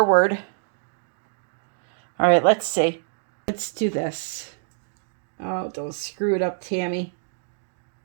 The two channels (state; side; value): silent; left; digital silence